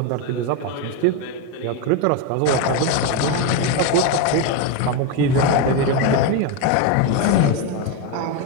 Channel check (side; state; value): both; different; correlation 0.03